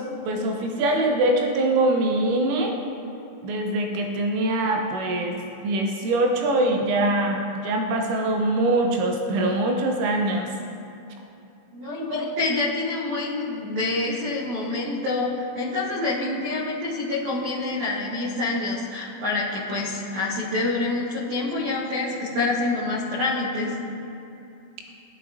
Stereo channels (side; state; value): left; late; 21 ms